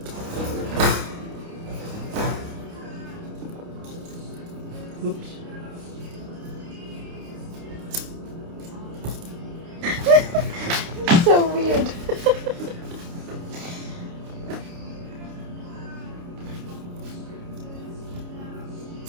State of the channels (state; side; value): late; left; 29 ms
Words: Oops. So weird.